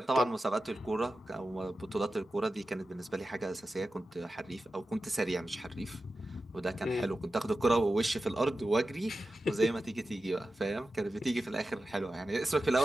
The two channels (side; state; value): both; normal; correlation 0.93